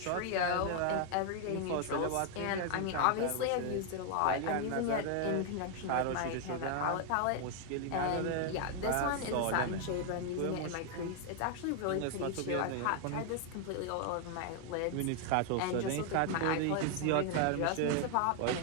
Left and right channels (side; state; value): both; different; correlation 0.00